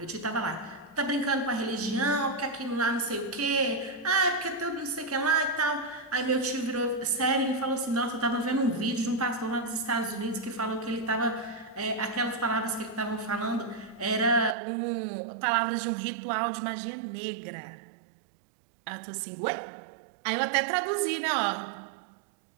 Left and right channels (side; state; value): left; drops out; at 14.6 s